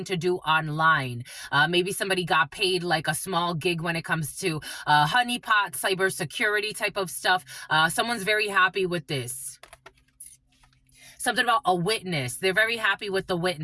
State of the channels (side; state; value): both; identical; correlation 1.00